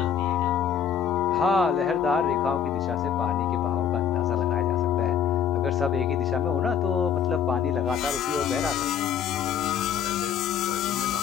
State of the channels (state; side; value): quieter; right; 8.2 dB